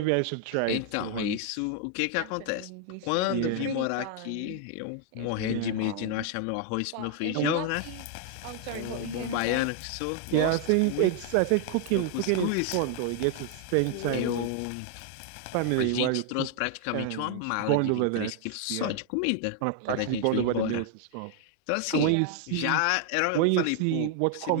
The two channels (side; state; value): both; different; correlation 0.00